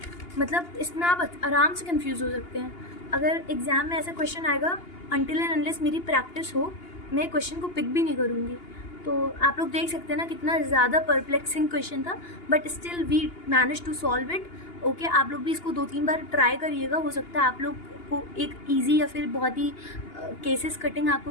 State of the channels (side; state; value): right; late; 2.8 ms